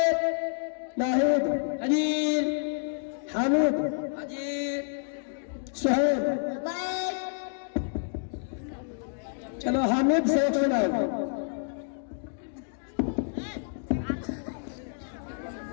नाहिद, हाजिर। हामिद, हाजिर। सुहेब। लबैक। चलो हामिद से एक सुनाओ।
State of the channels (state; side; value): silent; right; digital silence